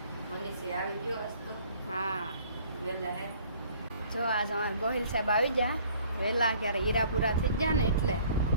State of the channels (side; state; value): both; inverted; correlation -0.56